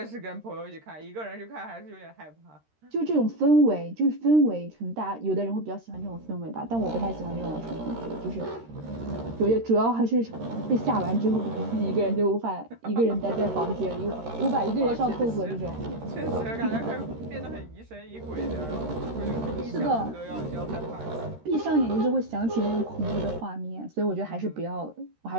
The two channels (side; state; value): left; late; 13 ms